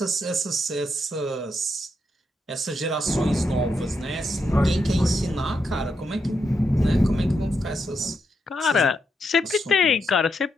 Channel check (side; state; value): both; normal; correlation 0.82